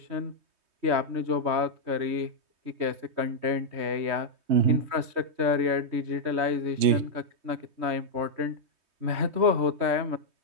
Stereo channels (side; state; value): left; late; 3.2 ms